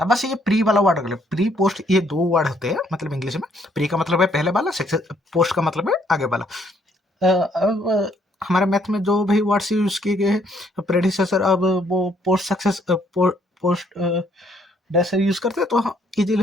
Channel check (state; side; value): normal; both; correlation 0.68